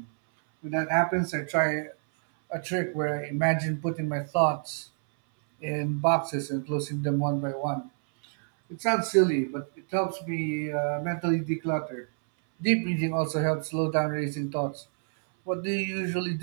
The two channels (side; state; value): left; silent; 59 dB below the other